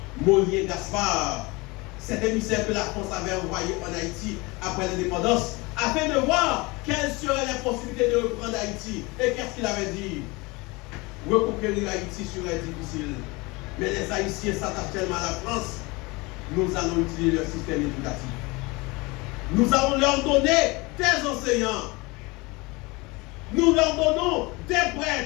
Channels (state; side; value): quieter; right; 24.8 dB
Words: Mollier Gaspard, cet émissaire que la France avait envoyé en Haïti après l'indépendance, afin de voir quelles seraient les possibilités de reprendre Haïti. Et qu'est-ce qu'il avait dit? Reconquérir Haïti serait difficile. Mais les Haïtiens s'attachent tellement à la France, nous allons utiliser leur système éducatif. Nous allons leur donner des enseignants. Nous leur donnons des